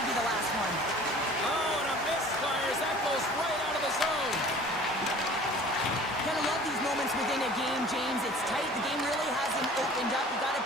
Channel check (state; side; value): normal; both; correlation 0.47